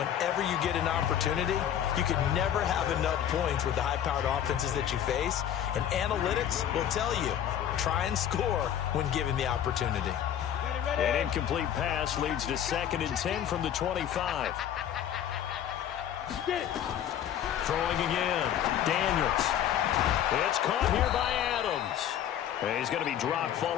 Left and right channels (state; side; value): quieter; right; 10.2 dB